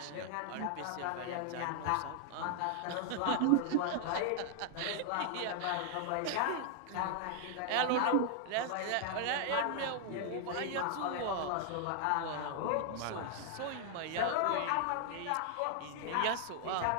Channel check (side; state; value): both; different; correlation 0.00